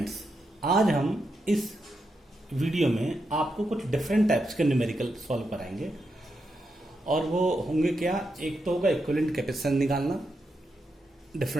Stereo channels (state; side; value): normal; both; correlation 0.85